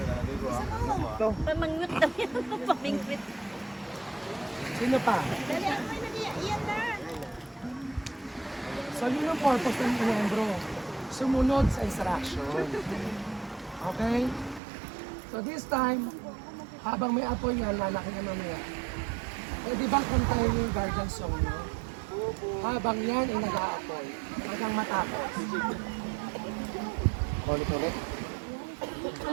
Gusto mo? Pamangwit na yan. Pamingwit. Sino pa? Dali, ako na yan na. So yun ang purpose ng miyembro. Sumunod sa instruction. Okay? So this time, habang may apoy yan, lalaki na mamaya. Eh di ba kantayin yung guardian song nyo? Habang yan ay nag-aapoy, hanggang matapos. Ulit-ulit.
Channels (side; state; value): left; drops out; at 14.6 s